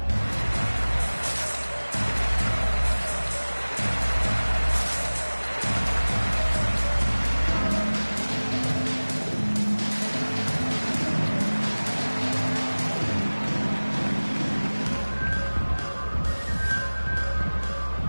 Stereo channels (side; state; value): both; inverted; correlation -1.00